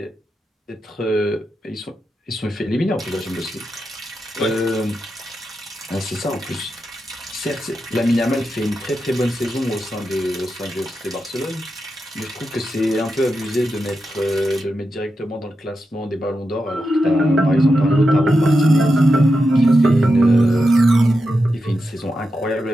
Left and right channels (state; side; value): normal; both; correlation 0.88